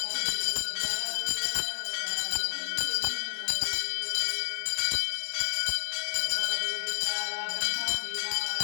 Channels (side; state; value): right; silent; 58 dB below the other